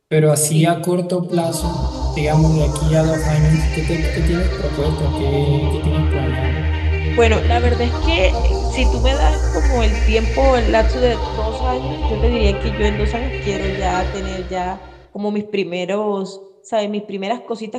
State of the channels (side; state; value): both; identical; correlation 1.00